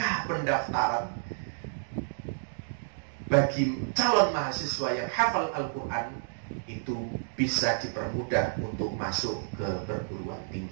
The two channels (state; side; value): silent; left; digital silence